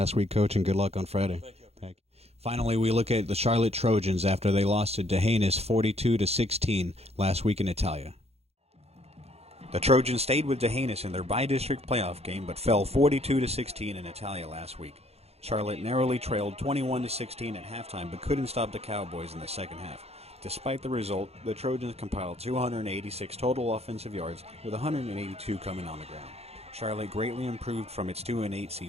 week, Coach, and good luck on Friday. Thank you. Finally, we look at the Charlotte Trojans after they lost to Dehanis 42-16 last week in Italia. The Trojans stayed with Dehanis in their bi-district playoff game, but fell 42-16 in Italia last week. Charlotte narrowly trailed 21-16 at halftime, but couldn't stop the Cowboys in the second half. Despite the result, the Trojans compiled 286 total offensive yards, with 182 coming on the ground. Charlotte greatly improved from its 2-8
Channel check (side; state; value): left; late; 0.30 ms